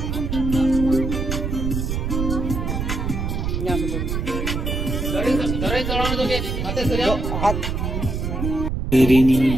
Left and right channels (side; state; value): right; noise; rumble, 2 dB below the sound